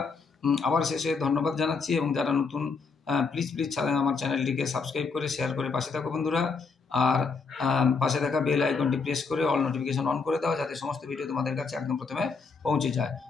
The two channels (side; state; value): right; quieter; 4.8 dB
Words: আবার শেষে ধন্যবাদ জানাচ্ছি, এবং যারা নতুন প্লিজ আমার চ্যানেলটিকে সাবস্ক্রাইব করে শেয়ার করে পাশে থাকো বন্ধুরা। আর পাশে থাকা বেল আইকনটি প্রেস করে অল নোটিফিকেশন অন করে দাও, যাতে সমস্ত ভিডিও তোমাদের কাছে একদম প্রথমে পৌঁছে যায়।